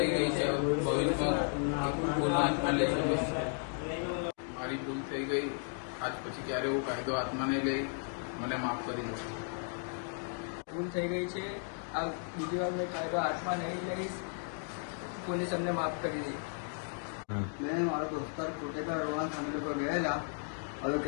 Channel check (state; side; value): silent; right; 55 dB below the other